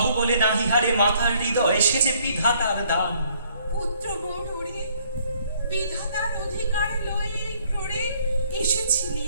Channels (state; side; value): inverted; both; correlation -0.63